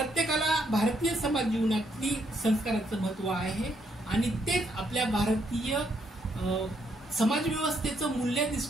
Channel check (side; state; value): both; normal; correlation 0.74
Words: भारतीय समाज जीवनातली संस्काराचं महत्व आहे आणि तेच आपल्या भारतीय समाज व्यवस्थेचं